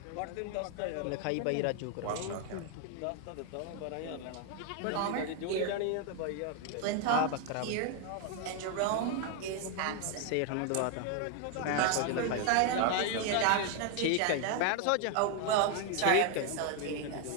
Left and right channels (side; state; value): both; different; correlation 0.01